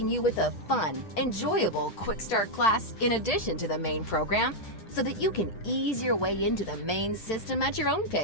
you with a fun, enjoyable quick start class in addition to the main program so that you can ease your way into the main system at your own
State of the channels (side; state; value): right; late; 9.9 ms